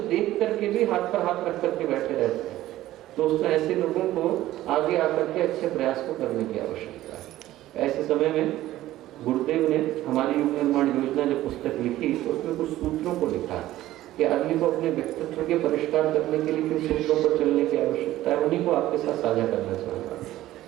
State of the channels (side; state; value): left; quieter; 14.9 dB